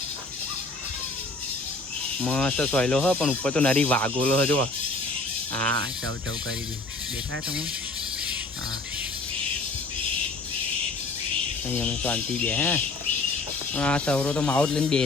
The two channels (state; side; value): quieter; right; 3.3 dB